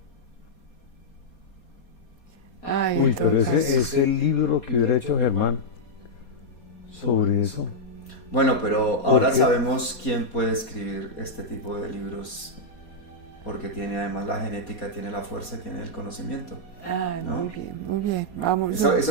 Ay, Uy, pero entonces- ese es el libro que hubiera hecho Germán sobre eso. Bueno, pero ahora qué? sabemos quién puede escribir este tipo de libros, porque tiene además la genética, tiene la fuerza, tiene el conocimiento. Ay, ¿no? muy bien, muy bien. Vamos.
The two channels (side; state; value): right; late; 4.2 ms